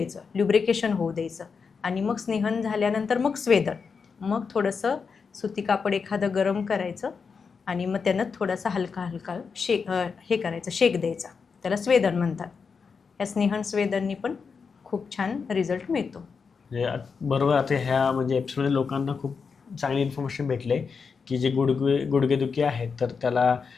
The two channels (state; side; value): quieter; right; 5.5 dB